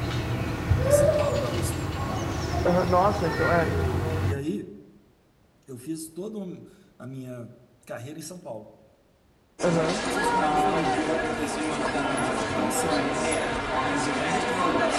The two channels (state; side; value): identical; both; correlation 1.00